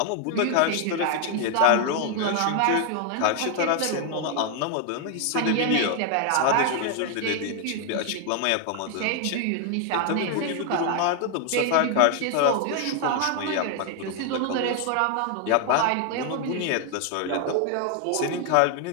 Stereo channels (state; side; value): different; both; correlation 0.00